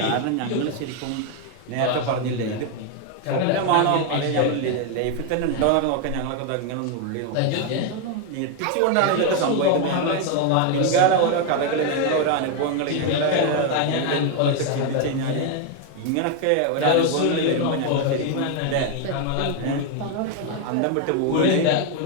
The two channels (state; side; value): different; both; correlation 0.01